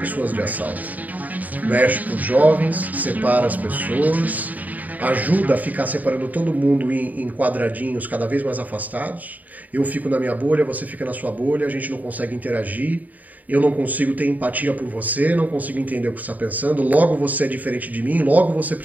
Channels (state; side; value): late; left; 0.077 ms